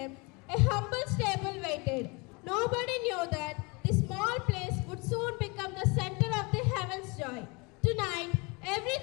a humble stable waited. Nobody knew that this small place would soon become the center of the heaven's joy. Tonight,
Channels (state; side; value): quieter; right; 28.1 dB